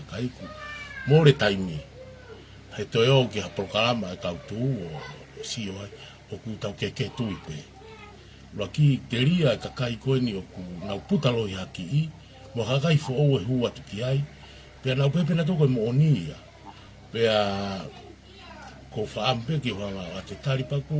kai ku more taimi. He toi o ki ha prokarama e kau tu o si o ai o ku tau ke tui pe. Ua ki te ria e ka kai koe ni o ku nau putalo i haki i mo hakai fo o e hua tu ki ai. Pe nau pepe na toko e mo onia. Pe a ko whaampe ki whanga a te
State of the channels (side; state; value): both; identical; correlation 1.00